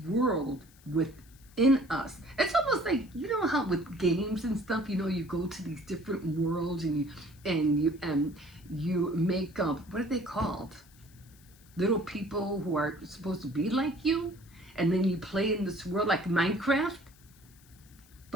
world within us. It's almost like, how with games and stuff, you go to these different worlds and you make up, what are they called? Little people who are supposed to be like you, and then you play in this world like Minecraft.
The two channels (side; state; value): left; noise; hiss, 27 dB below the sound